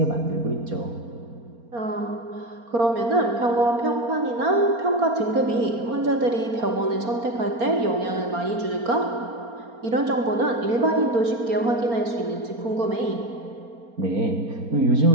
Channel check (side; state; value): left; late; 4.3 ms